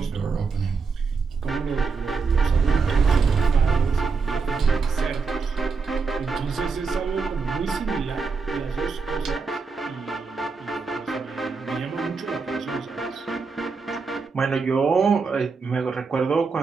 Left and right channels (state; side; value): quieter; left; 4.9 dB